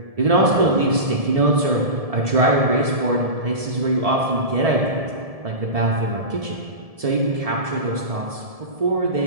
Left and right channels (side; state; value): left; late; 1.7 ms